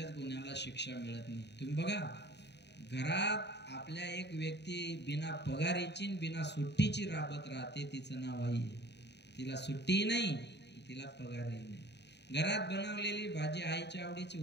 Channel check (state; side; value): late; right; 0.50 ms